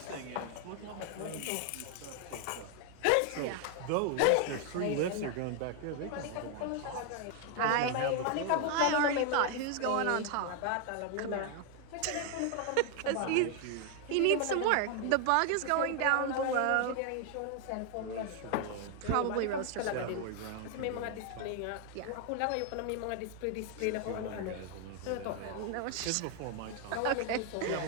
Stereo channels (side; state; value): both; different; correlation 0.00